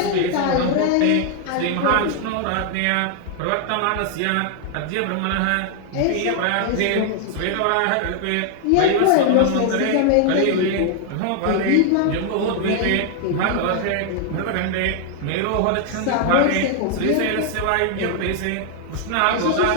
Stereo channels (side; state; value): both; different; correlation 0.00